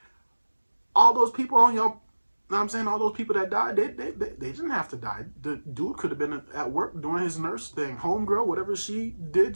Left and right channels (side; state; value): both; inverted; correlation -1.00